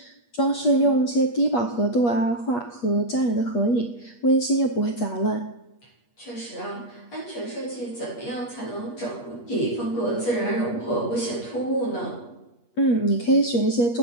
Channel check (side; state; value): right; late; 8.4 ms